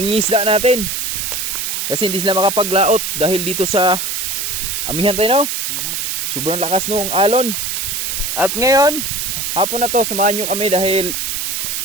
natin. Kasi hindi sila makapaglaot dahil dito sa amihan tayo, no? Sobrang lakas nung alon. At ngayon, hapon na to, samahan nyo kami dahil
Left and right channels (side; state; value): right; noise; hiss, 2 dB below the sound